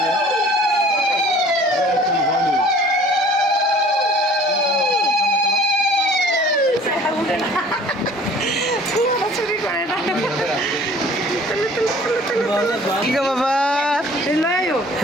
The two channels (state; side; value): normal; both; correlation 0.50